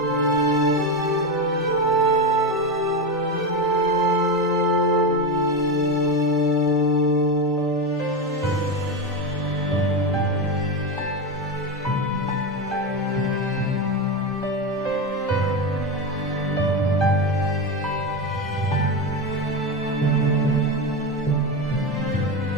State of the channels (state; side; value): normal; both; correlation 0.16